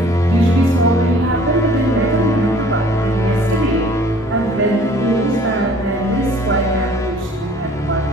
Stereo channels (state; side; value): normal; both; correlation 0.53